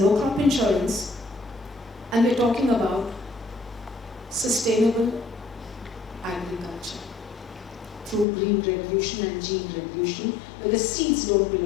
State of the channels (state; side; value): drops out; right; at 8.2 s